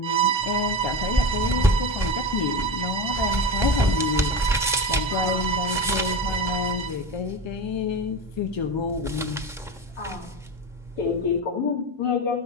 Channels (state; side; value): normal; both; correlation 0.23